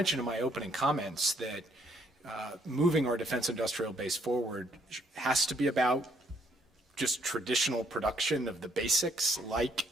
in my opening comments that moving our defense industrial base forward has to be about just traditional production of the basics like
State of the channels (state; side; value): normal; both; correlation 0.68